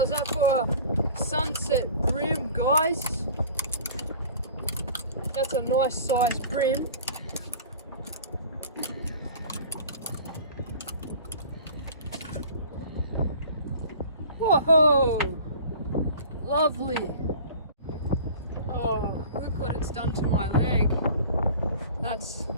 that for a sunset bream, guys? That's a nice sized bream. Whoa! Lovely. Oh, look what it's done to my leg. That's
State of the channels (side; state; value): both; inverted; correlation -0.43